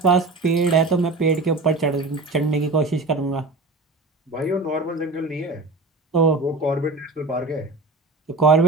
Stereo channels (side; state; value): left; quieter; 3.2 dB